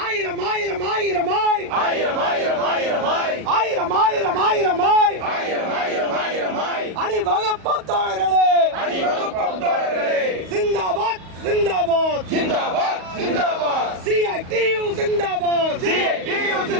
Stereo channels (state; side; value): late; left; 38 ms